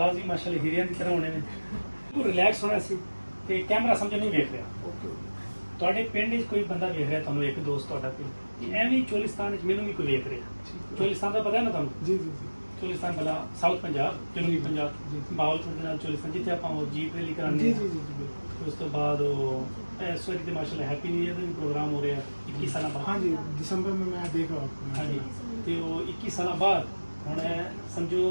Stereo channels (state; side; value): inverted; both; correlation -1.00